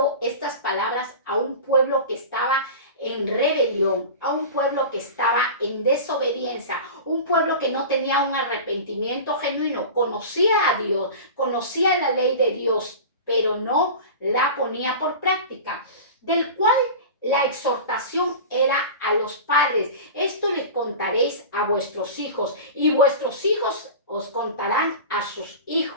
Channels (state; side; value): inverted; both; correlation -0.32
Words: estas palabras a un pueblo que estaba en rebelión, a un pueblo que estaba en desobediencia, un pueblo que no tenía un arrepentimiento genuino, conocía a Dios, conocía la ley de Dios, pero no la ponía por práctica, del cual la exhortación era a los padres: esto les contaréis a vuestros hijos, y vuestros hijos os contarán a sus